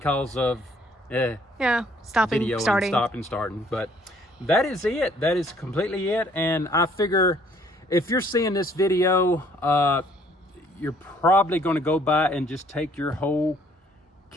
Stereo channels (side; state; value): both; normal; correlation 0.61